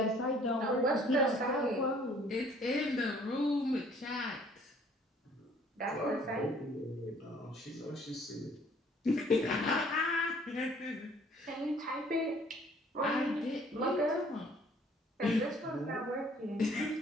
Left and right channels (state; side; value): normal; both; correlation 0.58